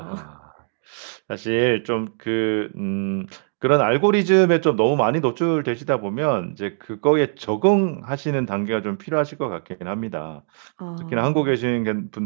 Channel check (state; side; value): silent; left; 64 dB below the other